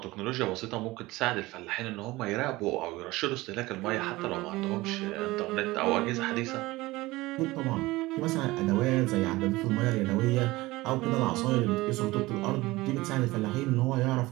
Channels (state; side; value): quieter; left; 19.9 dB